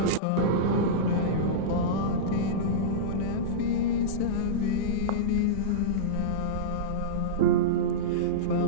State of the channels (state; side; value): different; both; correlation -0.06